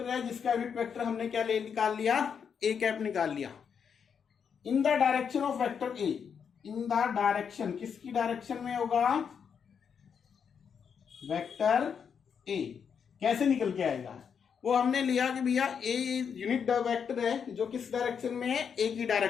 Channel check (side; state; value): right; quieter; 7.0 dB